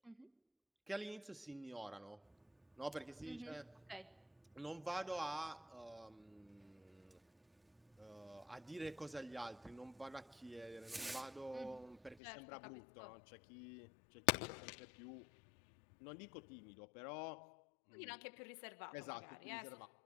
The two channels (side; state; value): right; drops out; at 12.2 s